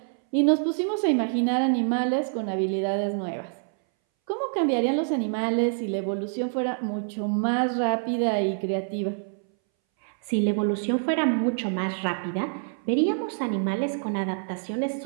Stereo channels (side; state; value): left; silent; 60 dB below the other